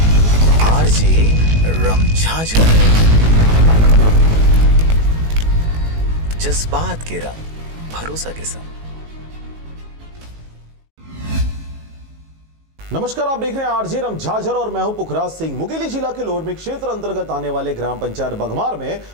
आरजे रमझाझर। जज्बात के रंग भरोसा के संग। नमस्कार, आप देख रहे हैं आरजे रमझाझर और मैं हूं पुखराज सिंह। मुंगेली जिला के लोरमी क्षेत्र अंतर्गत आने वाले ग्राम पंचायत बघमार में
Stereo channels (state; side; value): late; left; 19 ms